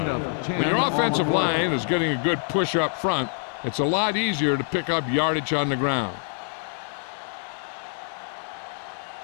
When your offensive line is getting a good push up front, it's a lot easier to pick up yardage on the ground.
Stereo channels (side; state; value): right; silent; 60 dB below the other